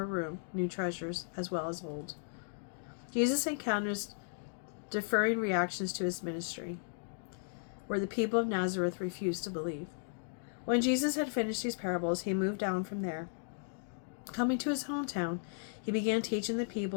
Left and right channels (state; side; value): silent; right; digital silence